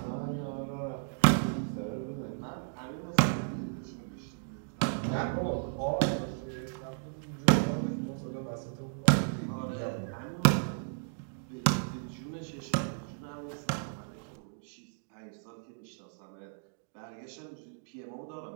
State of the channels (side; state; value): left; silent; digital silence